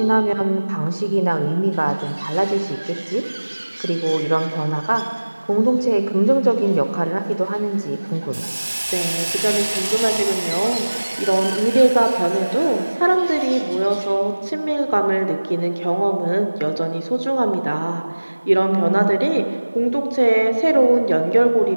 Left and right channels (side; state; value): both; inverted; correlation -1.00